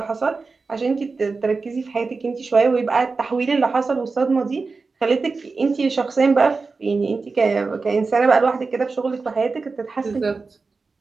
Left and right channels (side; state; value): left; quieter; 4.2 dB